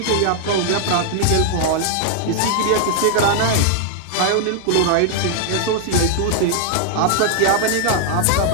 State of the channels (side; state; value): both; different; correlation -0.01